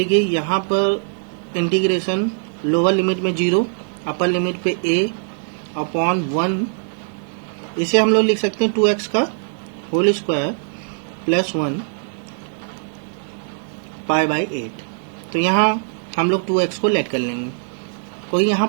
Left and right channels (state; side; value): silent; left; digital silence